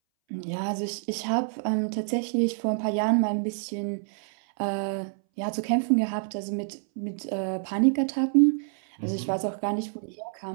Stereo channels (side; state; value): left; silent; 60 dB below the other